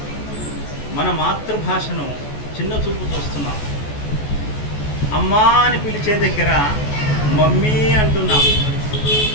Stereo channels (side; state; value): right; late; 14 ms